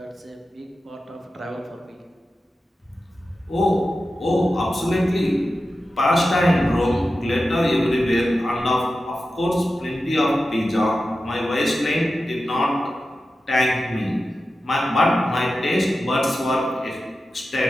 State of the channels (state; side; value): normal; both; correlation 0.92